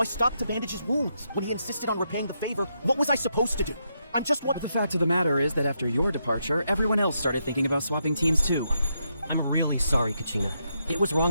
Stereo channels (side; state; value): both; inverted; correlation -0.81